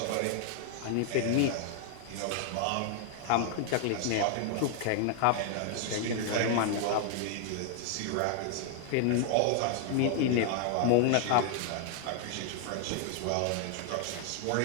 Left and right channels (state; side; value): different; both; correlation 0.00